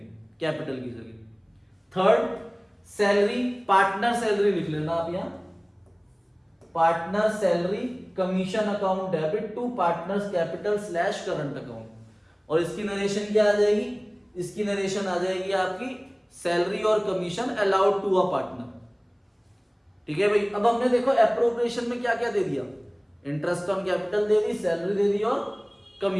कैपिटल की जगह। थर्ड, सैलरी, पार्टनर सैलरी लिख लेना आप यहां, partner salary commission account debit to partners capital slash current account. और इसकी नरेशन क्या आ जाएगी? इसकी नरेशन आ जाएगी आपकी सैलरी और commission allowed to a partner. ठीक है भाई, अब हमने देखो एप्रोप्रिएशन में क्या क्या दे दिया, इंटरेस्ट ऑन कैपिटल दे दी, सैलरी दे दी और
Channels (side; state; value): both; identical; correlation 1.00